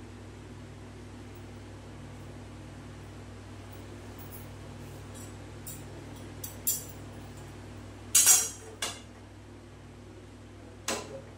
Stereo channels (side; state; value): both; identical; correlation 1.00